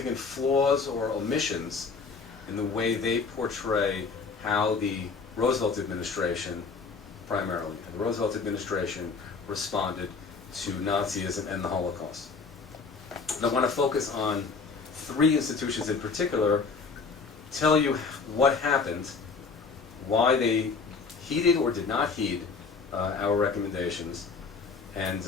flaws or omissions in the way they portray how the Roosevelt administration, primarily, the Roosevelt administration responded to Nazism and the Holocaust. And I want to focus on three institutions in particular, tell you what happened, why they heeded or did not heed our recommendations, and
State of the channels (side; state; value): right; quieter; 4.8 dB